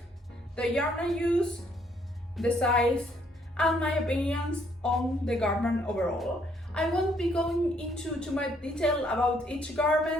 the yarn I use, the size, and my opinions on the garment overall. I won't be going into too much detail about each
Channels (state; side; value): normal; both; correlation 0.68